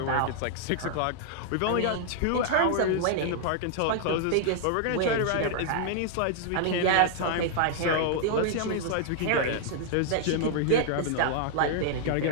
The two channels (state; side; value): different; both; correlation 0.00